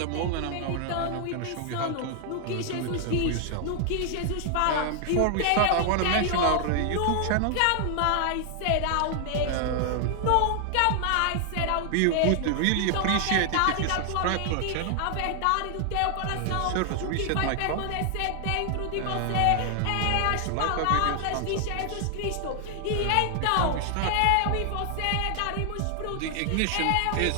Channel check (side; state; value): both; different; correlation 0.00